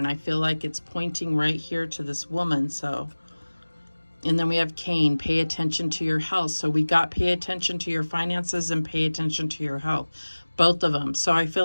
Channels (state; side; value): inverted; both; correlation -1.00